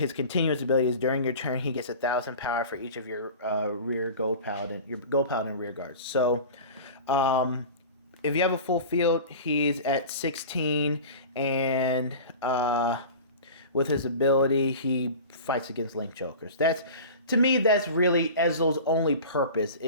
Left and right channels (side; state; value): both; inverted; correlation -0.36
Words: continuous ability is during your turn he gets 1,000 power for each of your gold paladin rear guards. So if you have a full field, he's at 16, and with his ability he fights against link jokers. To me, that's really Ezreal's only purpose,